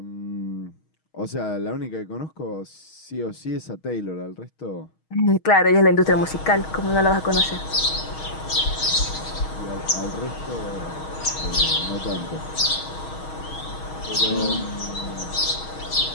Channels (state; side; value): late; right; 6.3 ms